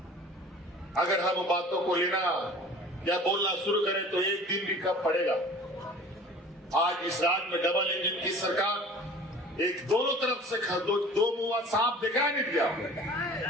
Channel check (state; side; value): normal; both; correlation 0.44